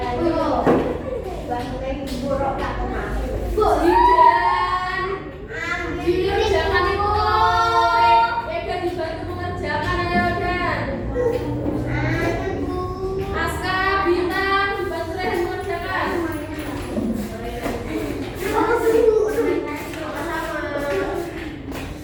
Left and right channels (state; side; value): identical; both; correlation 1.00